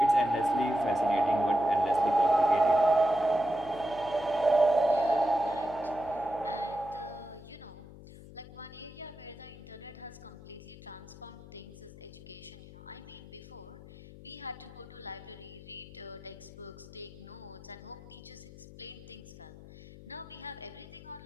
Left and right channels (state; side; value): noise; left; hum, 17 dB below the sound